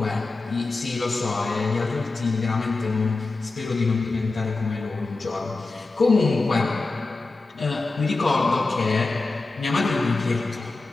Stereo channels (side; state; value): right; quieter; 3.5 dB